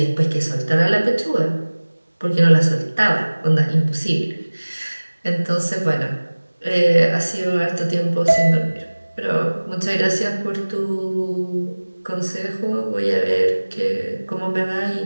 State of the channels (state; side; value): inverted; both; correlation -1.00